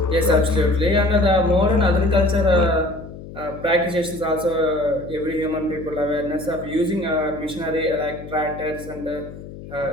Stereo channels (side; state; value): left; noise; hum, 14 dB below the sound